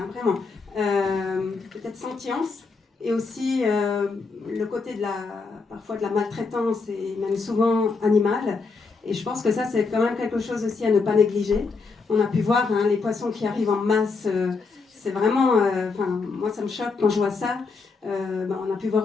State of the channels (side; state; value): right; quieter; 4.4 dB